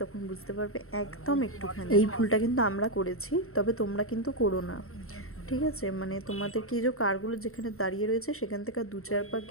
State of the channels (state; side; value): late; right; 0.62 ms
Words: তখন বুঝতে পারবে একদম একটুখানি। এই ভুলটা কিন্তু আমরা করেছি, তবে তোমরা কিন্তু করো না, ঠিক আছে? মানে তোমাদেরকে এই যে কারগুলো যেখানে দাঁড়িয়ে রয়েছে সেখান থেকে 2-4 পা